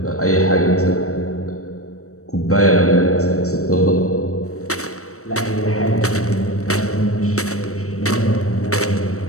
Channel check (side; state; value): right; late; 0.65 ms